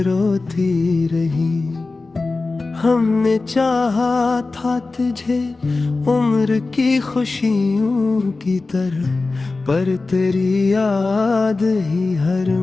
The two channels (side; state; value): right; quieter; 3.6 dB